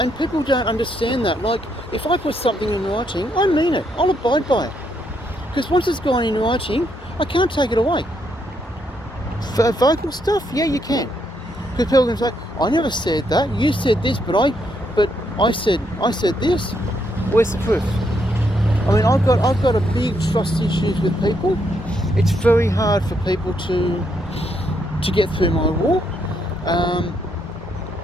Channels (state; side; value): normal; both; correlation 0.76